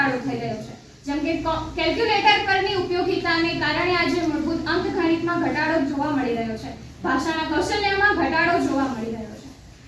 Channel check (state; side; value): identical; both; correlation 1.00